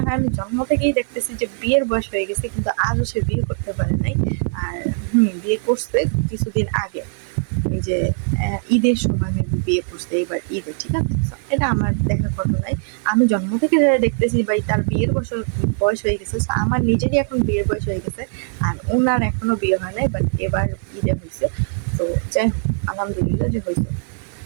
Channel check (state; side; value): silent; left; 65 dB below the other